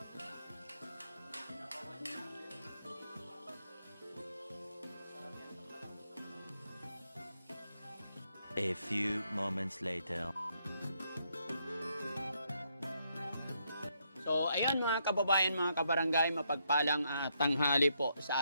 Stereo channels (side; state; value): both; inverted; correlation -0.76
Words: A few moments later. So, ayun mga kababayan, mga kabarangay, mapagpalang tanghali po